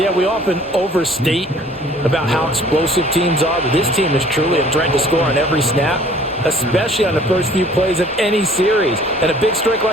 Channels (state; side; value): normal; both; correlation 0.54